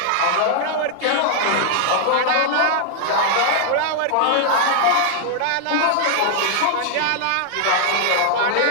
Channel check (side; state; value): both; different; correlation -0.01